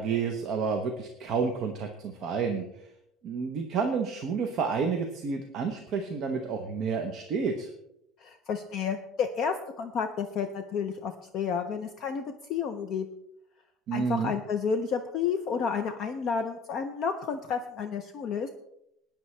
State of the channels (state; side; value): normal; both; correlation 0.43